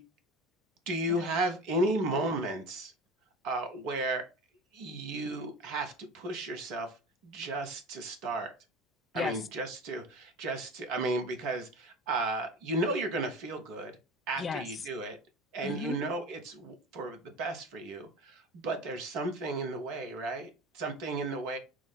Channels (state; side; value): normal; both; correlation 0.33